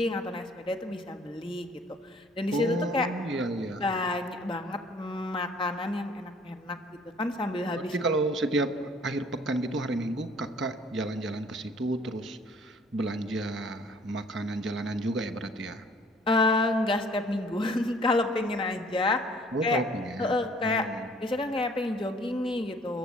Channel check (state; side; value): normal; both; correlation 0.56